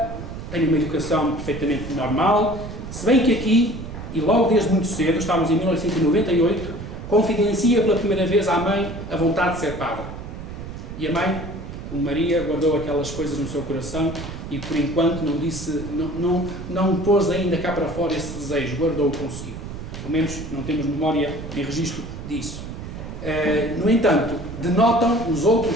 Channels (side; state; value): right; noise; rumble, 9 dB below the sound